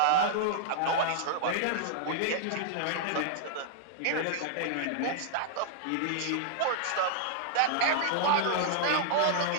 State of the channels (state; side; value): different; both; correlation -0.01